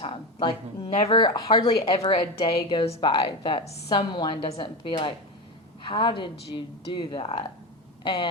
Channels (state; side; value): normal; both; correlation 0.19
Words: Like, hardly ever a day goes by that someone doesn't be like, how did you do that?